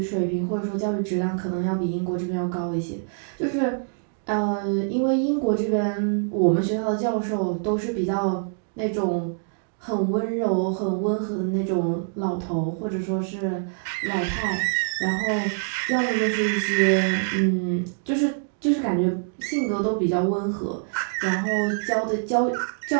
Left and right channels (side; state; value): left; silent; digital silence